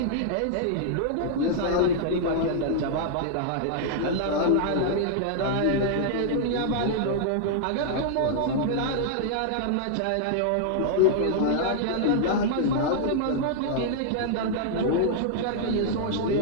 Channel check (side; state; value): both; different; correlation -0.01